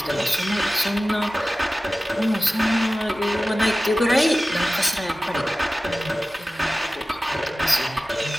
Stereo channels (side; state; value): both; normal; correlation 0.96